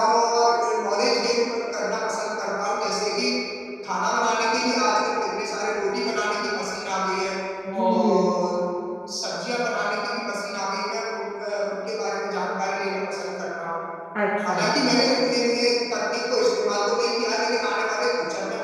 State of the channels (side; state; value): both; identical; correlation 1.00